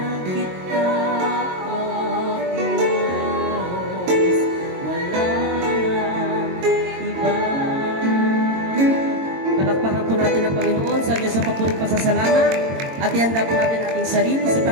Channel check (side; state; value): left; late; 22 ms